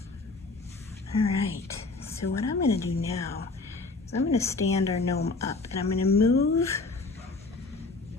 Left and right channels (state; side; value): quieter; right; 3.6 dB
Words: All right, so what I'm going to do now is I'm going to stand our gnome up, and I'm going to move